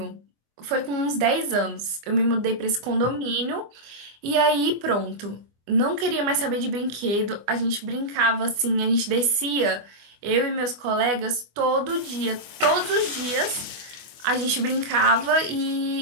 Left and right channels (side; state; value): left; late; 24 ms